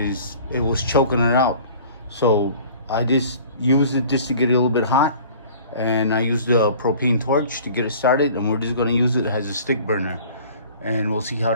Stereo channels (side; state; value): both; inverted; correlation -0.47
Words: it was choking it out. So I just used it just to get it a little bit hot. And I used the propane torch to get it started, and we're just gonna use it as a stick burner. And we'll see how